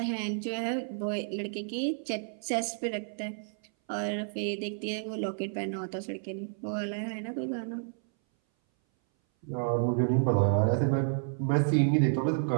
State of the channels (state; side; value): silent; left; 57 dB below the other